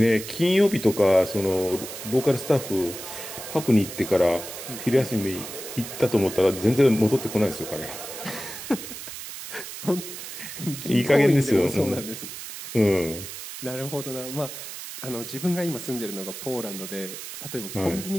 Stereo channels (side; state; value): right; noise; hiss, 10 dB below the sound